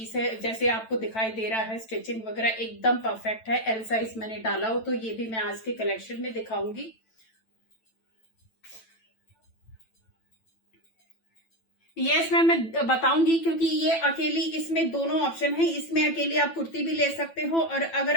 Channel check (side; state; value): right; late; 9.0 ms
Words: है, जैसे आपको दिखाई दे रहा है, स्टिचिंग वगैरह एकदम परफेक्ट है, एल साइज मैंने डाला हो, तो ये भी मैं आज के कलेक्शन में दिखाऊंगी। यस मैम, मैं बताऊंगी, क्योंकि ये अकेली, इसमें दोनों ऑप्शन है, इसमें अकेली आप कुर्ती भी ले सकते हो, और